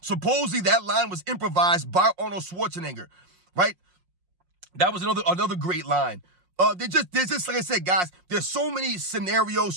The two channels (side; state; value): left; late; 5.6 ms